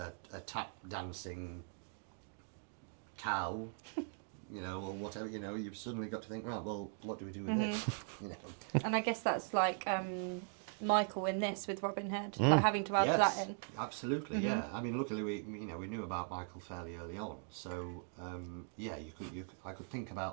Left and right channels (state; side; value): silent; left; 51 dB below the other